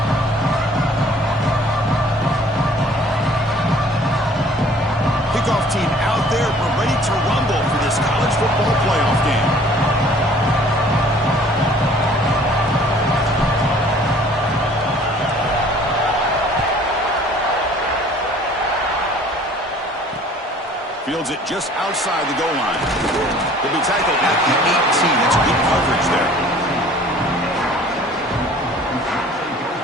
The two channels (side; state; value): both; normal; correlation 0.53